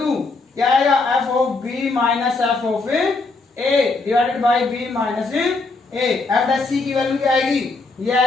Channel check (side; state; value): right; quieter; 3.7 dB